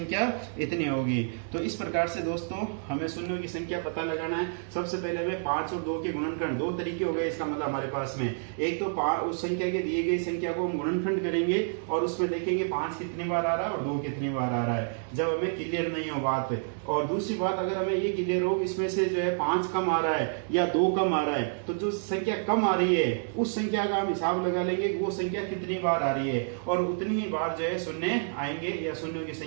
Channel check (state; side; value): silent; left; digital silence